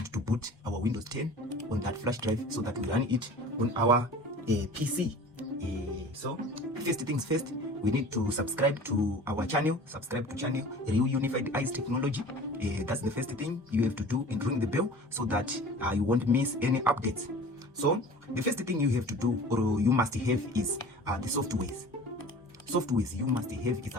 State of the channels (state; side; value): normal; both; correlation 0.41